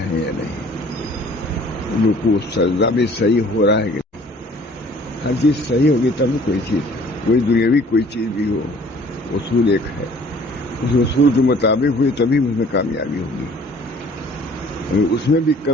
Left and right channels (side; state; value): both; normal; correlation 0.53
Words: ہیں یا نہیں، رکوع سجدہ بھی صحیح ہو رہا ہے کہ نہیں. ہر چیز صحیح ہوگی تب کوئی چیز، کوئی دنیاوی کوئی چیز بھی ہو، اصول ایک ہے، اس اصول کے مطابق ہوئی تبھی اس میں کامیابی ہوگی. اس میں بھی